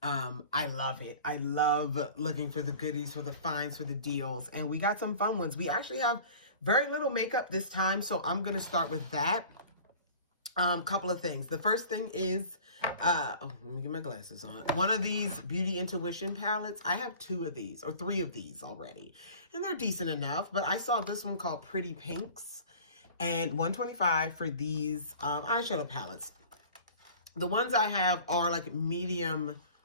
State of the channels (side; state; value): both; inverted; correlation -0.43